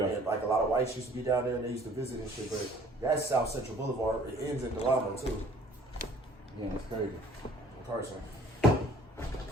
And like a lot of whites used to be down there and they used to visit and shit. But that's South Central Boulevard. It ends in Delano too. Yeah, it's crazy. Carson.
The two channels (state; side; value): normal; both; correlation 0.54